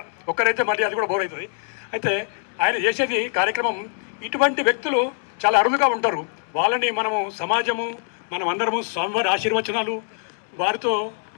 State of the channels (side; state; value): right; silent; 58 dB below the other